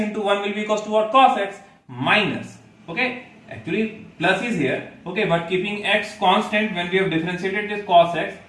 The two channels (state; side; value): identical; both; correlation 1.00